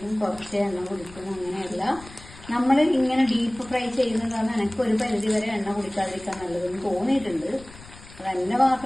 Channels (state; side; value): noise; left; rumble, 19 dB below the sound